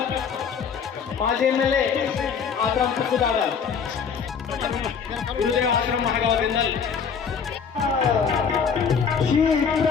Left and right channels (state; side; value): quieter; right; 6.5 dB